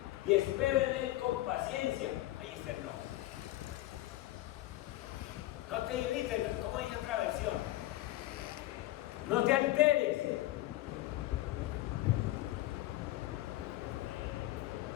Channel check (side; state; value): right; quieter; 16.4 dB